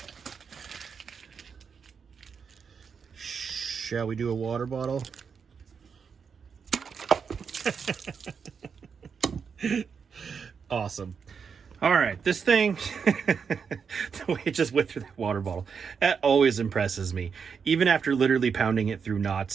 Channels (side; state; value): left; quieter; 6.2 dB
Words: Shall we do a water bottle? Awesome. All right, this thing, the way it just went through that water bottle, that always impresses me. Even after literally pounding it through